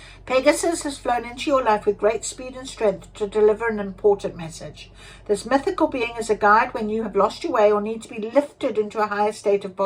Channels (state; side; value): identical; both; correlation 1.00